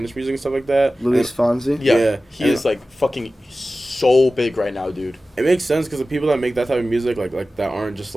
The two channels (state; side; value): normal; both; correlation 0.95